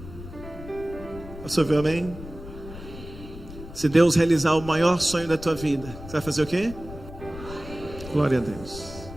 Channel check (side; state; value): left; noise; rumble, 13 dB below the sound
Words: você ouviu amém? Se Deus realizar o maior sonho da tua vida, você vai fazer o quê? Glória a Deus.